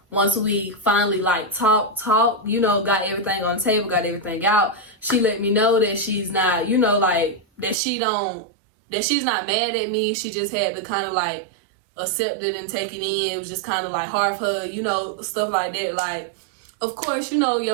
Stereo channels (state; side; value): drops out; left; at 7.8 s